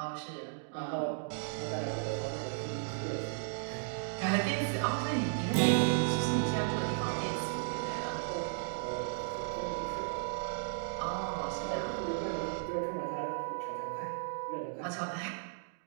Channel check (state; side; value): silent; left; digital silence